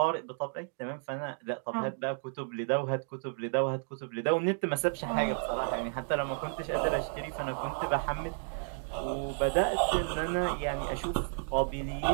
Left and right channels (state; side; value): silent; left; 56 dB below the other